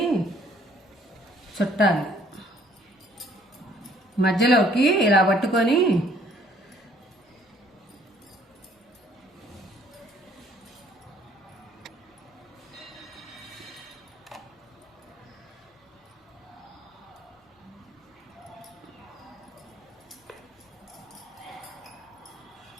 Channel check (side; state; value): both; normal; correlation 0.61